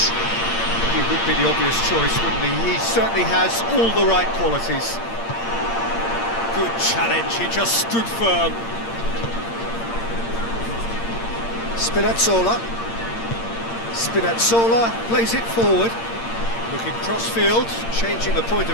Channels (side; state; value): right; late; 8.7 ms